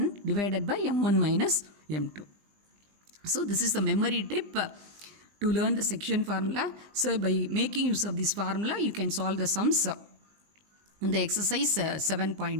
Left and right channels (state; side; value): late; left; 20 ms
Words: divided by m1 minus m2. So this is the memory tip to learn the section formula. So by making use of this formula, you can solve the sums in the exercise